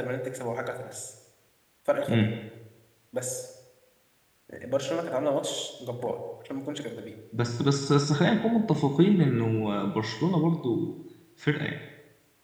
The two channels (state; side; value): identical; both; correlation 1.00